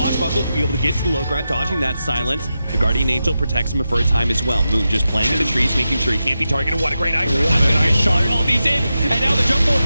to be able to get to the low ground, dodging that silence. The Guardian Angel protects him for a time as well. Moon just playing in the trees, making sure he can't be targeted. What a great ice shot. All these in, and now the jump forward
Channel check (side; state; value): both; inverted; correlation -0.90